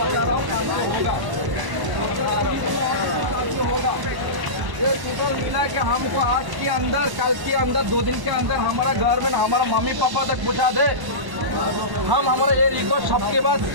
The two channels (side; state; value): left; late; 1.0 ms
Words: ये टोटल मिला के हमको आज के अंदर, कल के अंदर, 2 दिन के अंदर हमारा घर में हमारा मम्मी पापा तक पहुँचा दे। हम हमारा ये रिक्वेस्ट सबके बाद